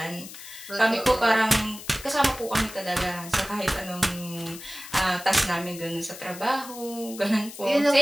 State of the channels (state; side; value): noise; left; hiss, 14 dB below the sound